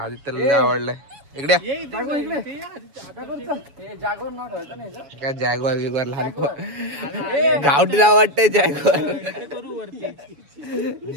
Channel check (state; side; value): late; left; 7.1 ms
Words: लय आवडलंय. इकडे जागोर इकडे जागोर नाव ठेवायचं नाही. काय जॅगवार बिगवार लहान गावठी नाव वाटतंय जॅगवार.